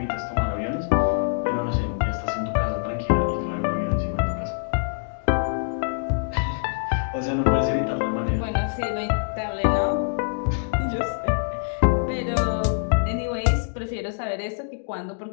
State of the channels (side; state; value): right; silent; digital silence